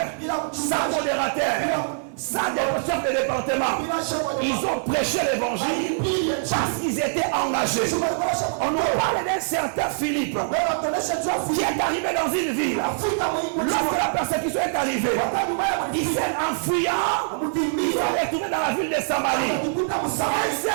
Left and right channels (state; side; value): silent; left; 63 dB below the other